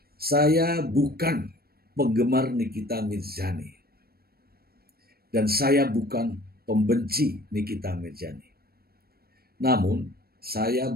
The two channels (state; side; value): late; left; 0.44 ms